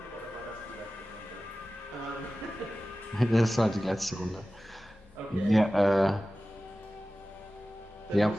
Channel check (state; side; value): normal; both; correlation 0.95